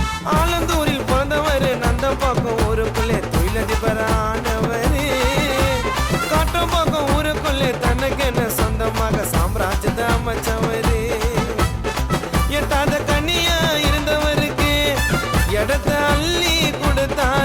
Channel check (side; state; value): both; identical; correlation 1.00